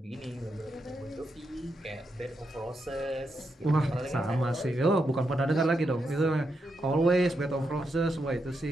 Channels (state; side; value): normal; both; correlation 0.83